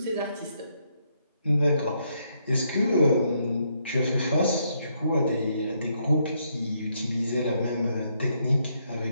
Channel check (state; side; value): inverted; both; correlation -0.75